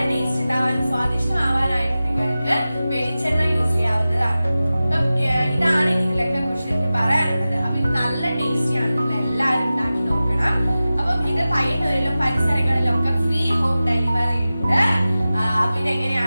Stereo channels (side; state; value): both; inverted; correlation -0.95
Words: ടേസ്റ്റ് ഉണ്ടാവാനും സ്വാദിഷ്ടമാവാനായിട്ട് നിങ്ങൾക്ക് വെളിച്ചെണ്ണ യൂസ് ചെയ്യാവുന്നതാണ്. അപ്പം ഇതാണ് ഇതിലൊക്കെ കുറിച്ച് എനിക്ക് പറയാനുള്ളത്. അപ്പൊ ഇത് നല്ല ടേസ്റ്റിയാണ്. നിങ്ങൾ എല്ലാവരും ഉണ്ടാക്കി നോക്കണം. അപ്പം ഇത് പയ്യന്നൂരിലും പരിസരങ്ങളിലും ഒക്കെ ഫ്രീ ഹോം ഡെലിവറി ഉണ്ട്. അപ്പൊ